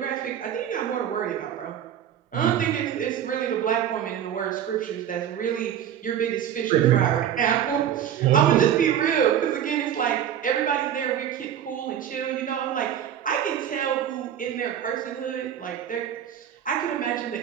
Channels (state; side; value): quieter; left; 9.8 dB